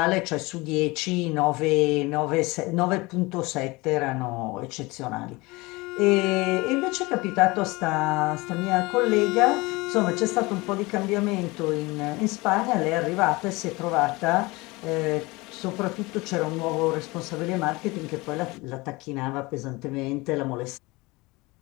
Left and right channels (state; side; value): quieter; right; 23.2 dB